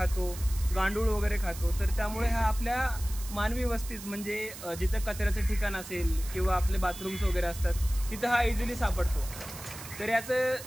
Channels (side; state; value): right; noise; hiss, 13 dB below the sound